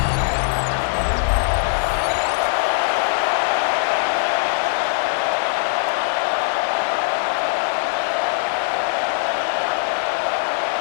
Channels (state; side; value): silent; right; 65 dB below the other